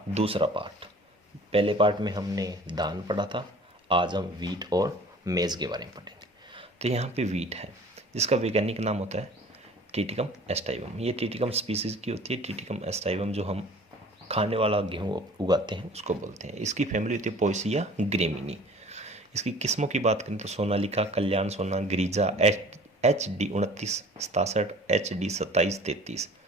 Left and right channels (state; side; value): normal; both; correlation 0.47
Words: दूसरा पार्ट। पहले पार्ट में हमने धान पढ़ा था, आज हम वीट और मेज़ के बारे में पढ़ेंगे। तो यहाँ पे वीट है, जिसका वैज्ञानिक नाम होता है टिटिकम एस्टाइवम। ये टिटिकम स्पीसीज़ की होती है। टिटिकम एस्टाइवम जो हम खाने वाला गेहूँ उगाते हैं उसको बोलते हैं। इसकी फैमिली होती है पोएसिया ग्रेमिनी। इसकी किस्मों की बात करें तो सोनालिका, कल्याण सोना, गिरिजा, HD 29, 67, HD 27, 33,